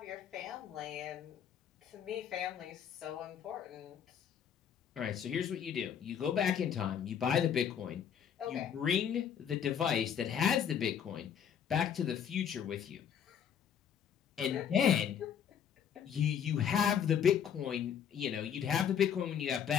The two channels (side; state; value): right; quieter; 8.5 dB